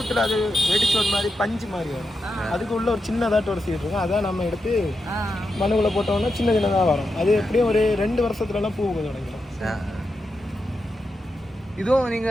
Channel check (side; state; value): both; normal; correlation 0.87